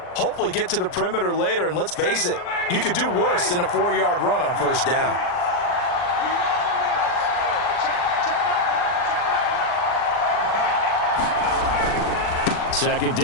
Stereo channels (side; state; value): right; late; 39 ms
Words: hopefully get to the perimeter later. And let's face it, you could do worse than a 4-yard run on first down. Second